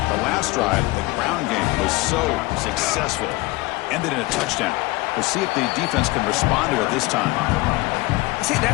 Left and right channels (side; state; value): right; quieter; 21.3 dB